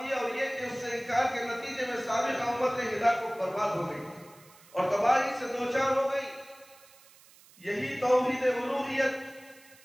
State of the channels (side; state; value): right; noise; hiss, 25 dB below the sound